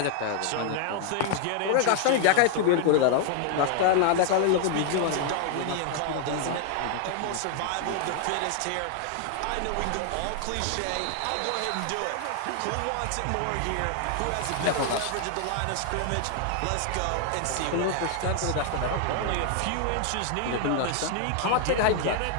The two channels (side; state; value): both; different; correlation 0.00